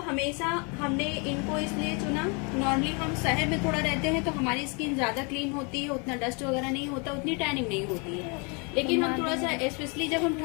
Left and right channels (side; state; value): right; quieter; 33.2 dB